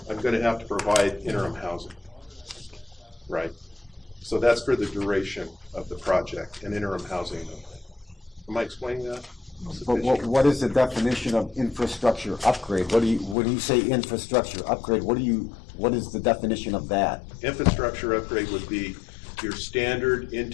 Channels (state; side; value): drops out; right; at 13.4 s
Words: I'm going to have to provide interim housing, right? So that's for the duration of the project, an interim housing. Am I explaining that? But what is the definition of infrastructure upgrade? When you say infrastructure upgrade, what is the definition of that? Infrastructure upgrade would be your standard